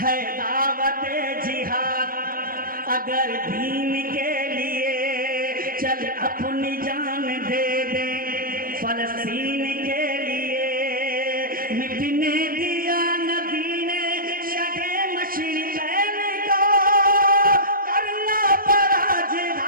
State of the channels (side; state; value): left; late; 0.41 ms